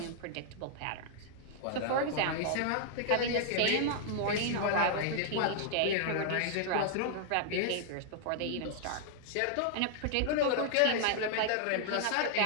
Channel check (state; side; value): different; both; correlation -0.01